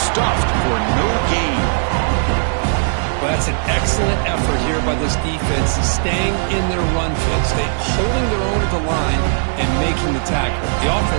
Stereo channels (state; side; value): silent; left; 68 dB below the other